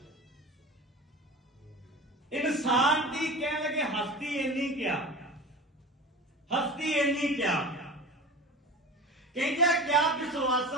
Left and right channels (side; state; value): both; normal; correlation 0.33